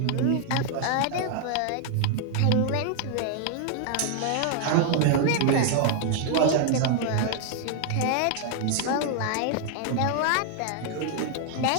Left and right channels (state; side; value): different; both; correlation 0.00